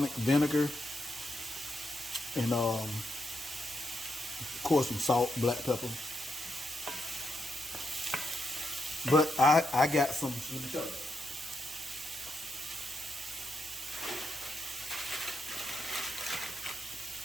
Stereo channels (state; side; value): normal; both; correlation 0.83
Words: vinegar, and of course some salt, black pepper. But I got some. Let me show you.